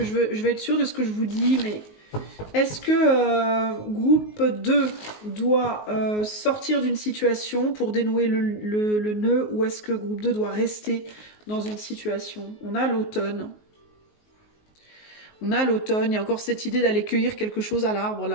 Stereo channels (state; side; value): late; right; 19 ms